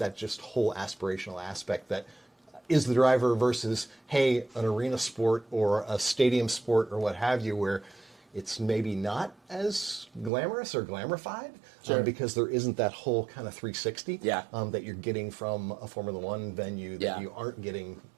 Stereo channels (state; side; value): drops out; left; at 10.3 s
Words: just whole aspirational aspect that is the driver versus, hey, an arena sport or a stadium sport or what have you, where it's maybe not as glamorous or glamorified. Because there isn't that whole kind of 360 that you're getting from a Formula One venue that you aren't getting